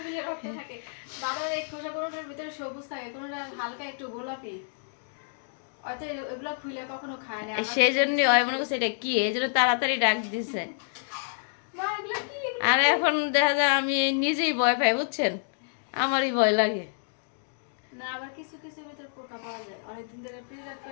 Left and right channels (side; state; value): right; silent; digital silence